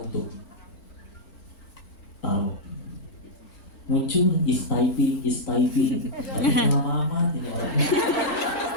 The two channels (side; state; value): right; late; 4.4 ms